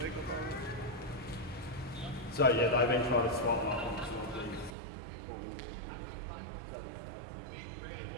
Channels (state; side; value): drops out; left; at 4.8 s